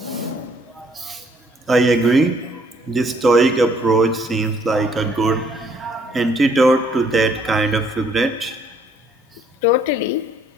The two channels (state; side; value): normal; both; correlation 0.64